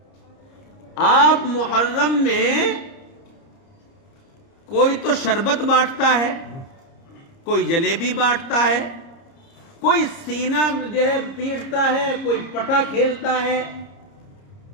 آپ محرم میں کوئی تو شربت بانٹتا ہے، کوئی جلیبی بانٹتا ہے، کوئی سینہ جو ہے پیٹتا ہے، کوئی پٹا کھیلتا ہے،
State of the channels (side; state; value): right; late; 30 ms